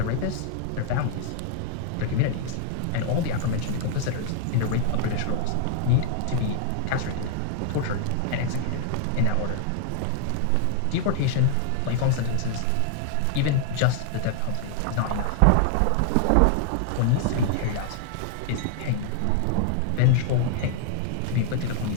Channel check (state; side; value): different; both; correlation -0.01